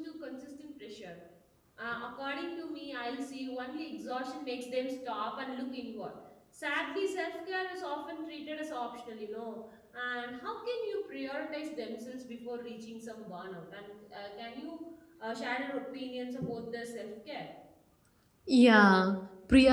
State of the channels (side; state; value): both; identical; correlation 1.00